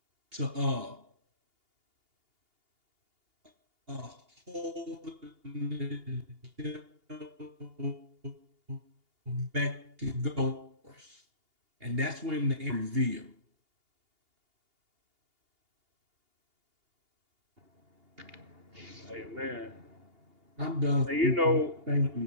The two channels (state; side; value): late; left; 2.8 ms